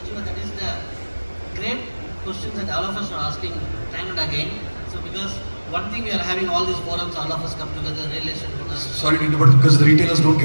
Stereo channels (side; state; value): both; inverted; correlation -1.00